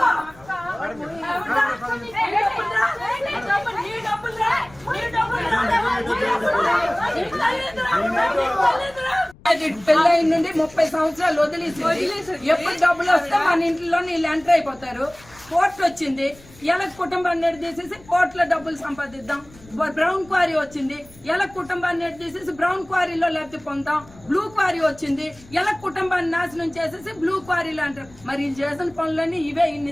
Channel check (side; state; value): left; noise; rumble, 24 dB below the sound